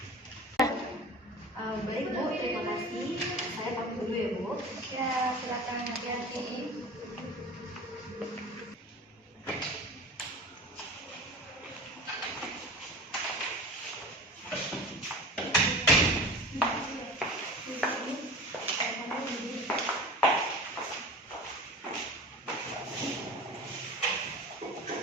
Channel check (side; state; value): both; normal; correlation 0.36